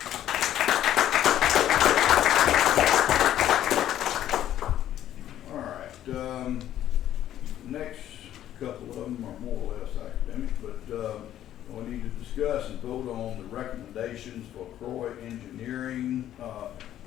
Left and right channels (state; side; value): quieter; right; 11.8 dB